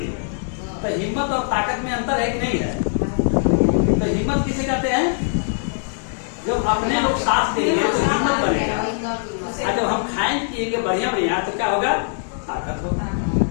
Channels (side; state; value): right; silent; digital silence